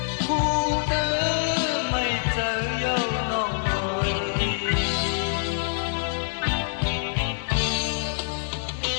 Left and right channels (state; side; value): silent; right; 57 dB below the other